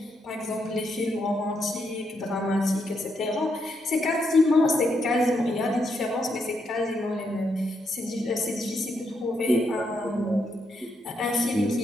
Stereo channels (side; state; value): both; normal; correlation 0.79